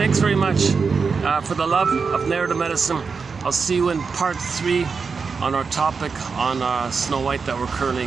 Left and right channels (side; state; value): left; quieter; 5.2 dB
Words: very much. For the love of narrative medicine, I'll see you in part 3 on our topic on Snow White that we're